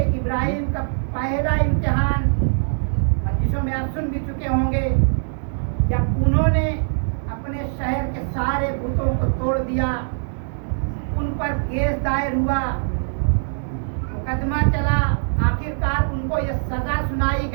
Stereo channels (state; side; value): silent; left; digital silence